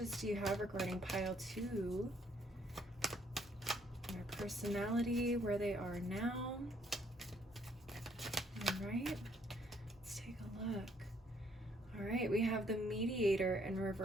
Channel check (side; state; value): both; normal; correlation 0.66